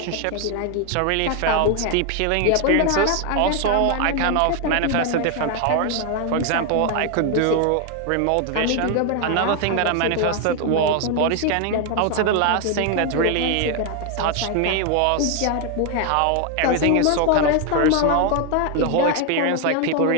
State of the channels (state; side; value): different; both; correlation 0.01